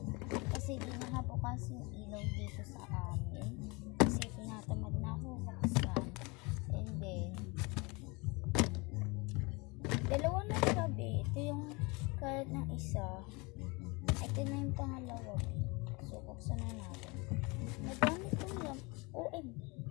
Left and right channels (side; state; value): right; quieter; 27.0 dB